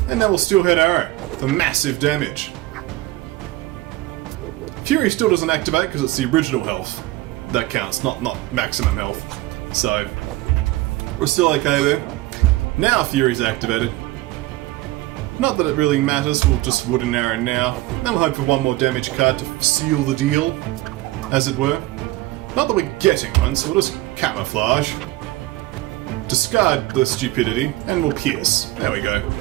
And now we'll Steelhead Arrow for massive damage. Fury still doesn't activate because it's the original health. That counts, not maximum health. So, we're still okay there. Now Fury's activated. Not that it really matters, we'll just Wooden Arrow now. Then we'll hope for one more damage card to seal the deal, as it were. Not that we're getting one, so we'll just camouflage. Discard the stupidity, and we'll pierce. There we go.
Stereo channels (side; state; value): left; quieter; 18.0 dB